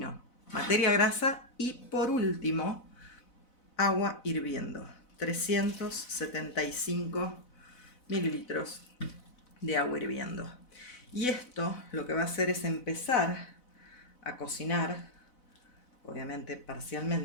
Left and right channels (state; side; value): late; right; 4.0 ms